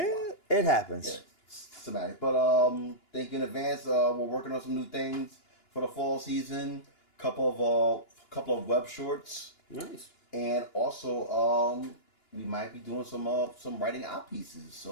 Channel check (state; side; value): late; right; 2.9 ms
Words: know why. It happens. Yeah, systematic. But thank you in advance. We're working on some new things for the fall season. Couple of web shorts, Nice. and also we might be doing some writing out pieces.